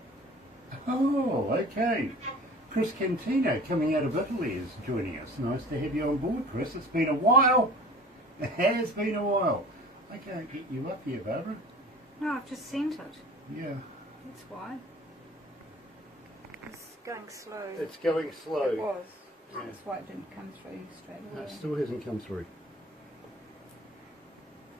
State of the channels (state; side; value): normal; both; correlation 0.44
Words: Oh, okay. Chris Cantino coming out of Italy is joining us. Nice to have you on board, Chris. It's been a while. It has been a while. I can't get you up here, Barbara. No, I've just sent it. Yeah. That's why. It's going slow. It's going slow. It was. Yeah. That's why it didn't come through straight No, away. it still hasn't come through.